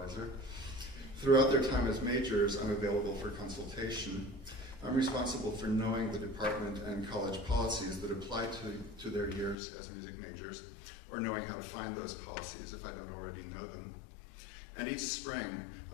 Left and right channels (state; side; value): drops out; right; at 9.6 s